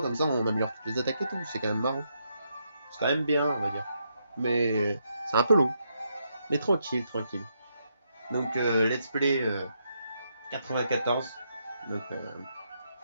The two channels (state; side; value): inverted; both; correlation -0.78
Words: ça on améliore toutes les attaques et tout, c'est quand même marrant. C'est quand même bien on va dire. Mais c'est un peu long. Mais tranquille, tranquille. Donc let's play 94. Donc la